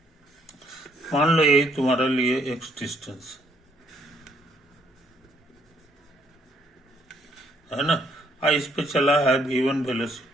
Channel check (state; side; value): normal; both; correlation 0.68